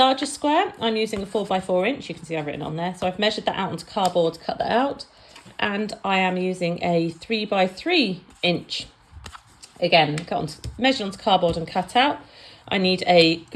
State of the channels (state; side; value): identical; both; correlation 1.00